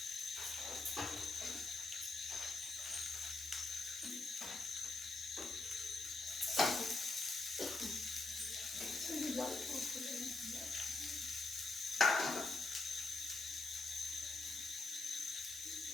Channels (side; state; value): right; quieter; 3.3 dB